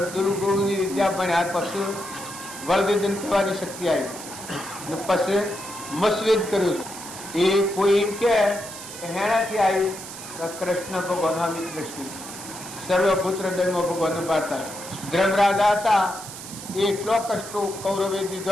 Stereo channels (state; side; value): noise; right; hiss, 12 dB below the sound